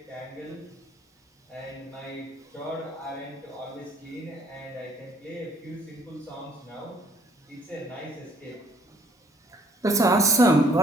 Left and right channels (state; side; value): normal; both; correlation 0.62